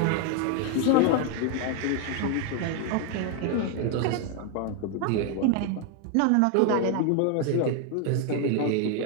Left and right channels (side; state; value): both; different; correlation 0.01